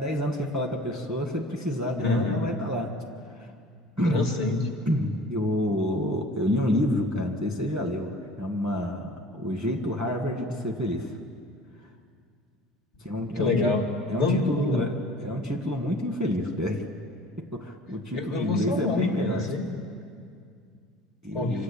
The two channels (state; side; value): normal; both; correlation 0.46